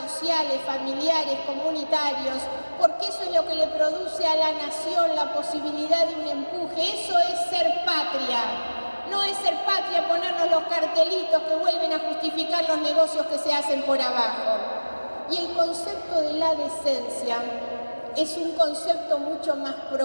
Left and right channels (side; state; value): both; inverted; correlation -1.00